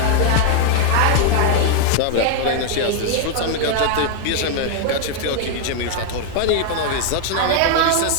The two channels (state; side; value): different; both; correlation 0.00